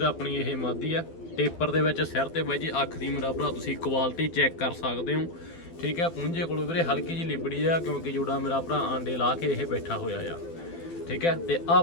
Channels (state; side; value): late; right; 12 ms